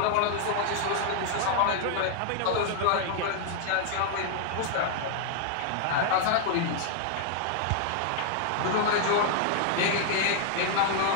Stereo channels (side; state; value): both; different; correlation 0.00